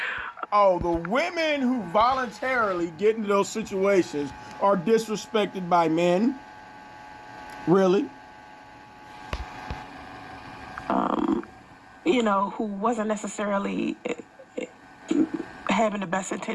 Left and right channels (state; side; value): identical; both; correlation 1.00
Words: Oh, the women who voluntarily get into those situations are disrespected by men? Really? You know, who wasn't necessarily having the best